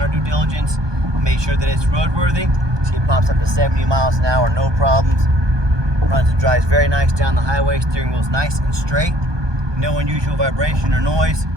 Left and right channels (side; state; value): left; late; 1.2 ms